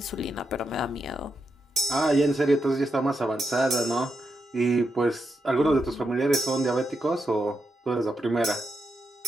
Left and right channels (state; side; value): normal; both; correlation 0.84